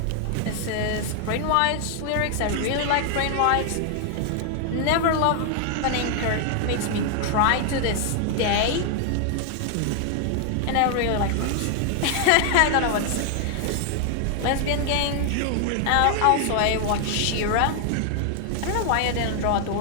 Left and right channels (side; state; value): both; different; correlation 0.00